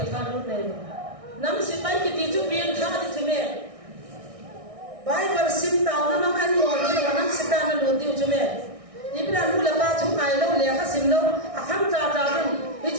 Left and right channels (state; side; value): late; left; 1.6 ms